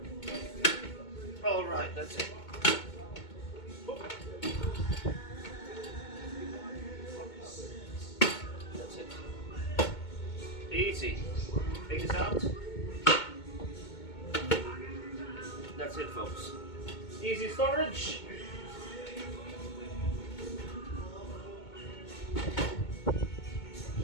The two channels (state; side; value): late; right; 2.2 ms